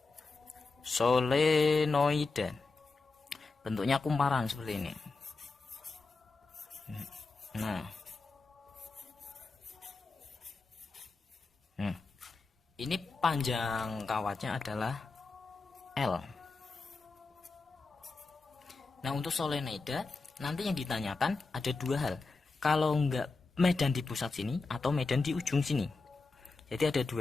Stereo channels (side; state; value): right; quieter; 3.9 dB